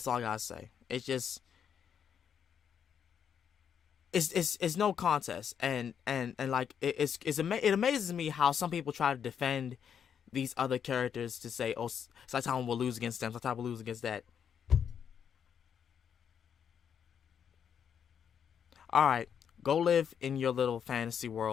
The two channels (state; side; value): quieter; right; 8.0 dB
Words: all I gotta say. It's just, it's no contest, and like it amazes me how some people try to defend these other characters to say, oh, Saitama will lose against them, Saitama will lose against that. All right, Go live in your little fantasy